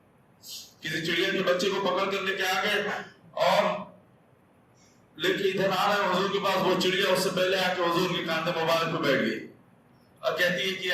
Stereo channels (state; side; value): identical; both; correlation 1.00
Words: کسی چڑیا کے بچے کو پکڑ کر لے کے آ گئے، اور لے کے ادھر آ رہے ہیں حضور کے پاس۔ وہ چڑیا اس سے پہلے آ کے حضور کے کاندھے مبارک پہ بیٹھ گئی اور کہتی ہے کہ